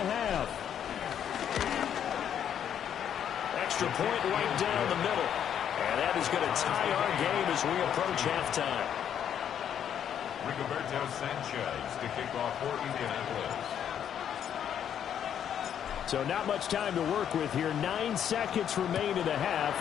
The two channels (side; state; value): right; quieter; 9.2 dB